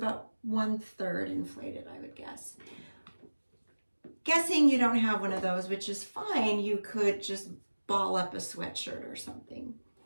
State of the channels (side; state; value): both; inverted; correlation -1.00